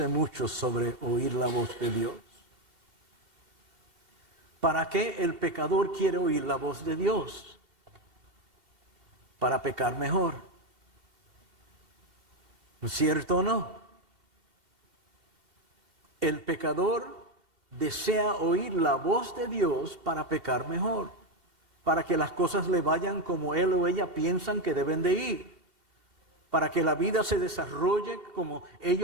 mucho sobre oír la voz de Dios. ¿Para qué el pecador quiere oír la voz de Dios? Para pecar mejor. ¿No es cierto o no? El pecador desea oír la voz de Dios para pecar mejor, para que las cosas le vayan como él o ella piensan que deben de ir, para que la vida se desarrolle como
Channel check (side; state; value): left; late; 2.8 ms